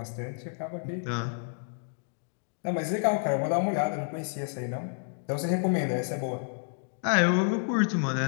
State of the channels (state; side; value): silent; right; digital silence